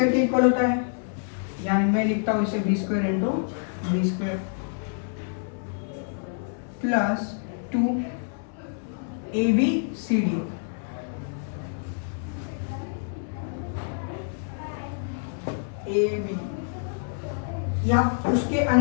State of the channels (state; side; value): silent; right; 60 dB below the other